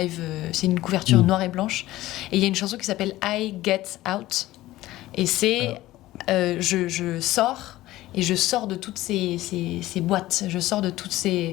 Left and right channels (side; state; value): right; quieter; 16.3 dB